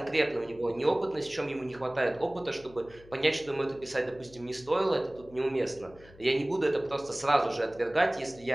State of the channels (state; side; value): noise; left; hum, 23 dB below the sound